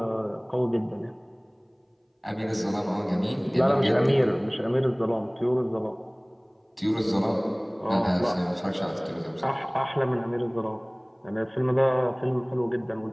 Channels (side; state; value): both; identical; correlation 1.00